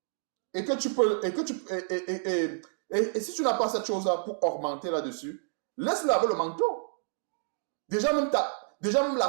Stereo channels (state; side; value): silent; left; digital silence